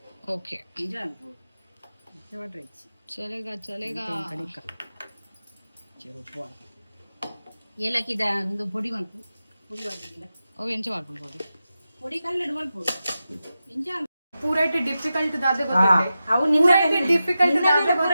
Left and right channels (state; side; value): inverted; both; correlation -0.91